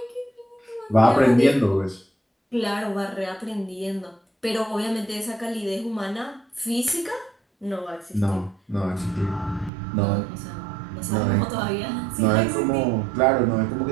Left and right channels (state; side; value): drops out; left; at 9.7 s